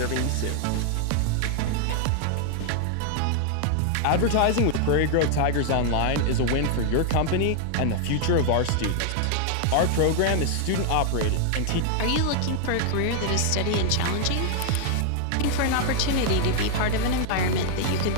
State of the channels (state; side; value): different; both; correlation 0.00